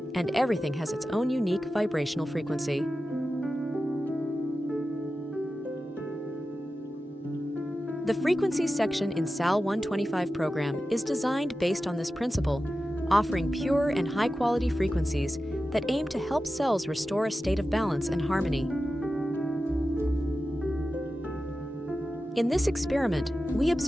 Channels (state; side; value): normal; both; correlation 0.93